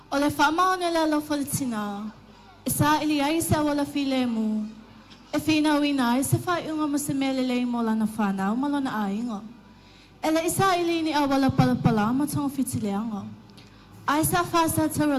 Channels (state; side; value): identical; both; correlation 1.00